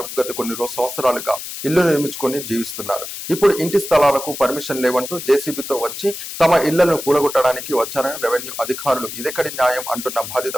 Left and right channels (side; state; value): left; noise; hiss, 9 dB below the sound